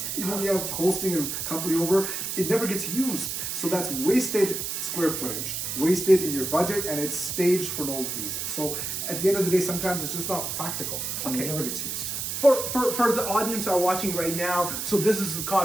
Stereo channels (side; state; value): right; noise; hiss, 3 dB below the sound